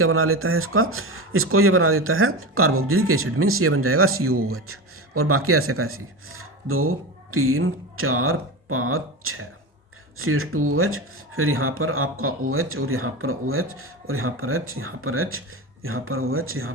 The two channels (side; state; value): both; normal; correlation 0.24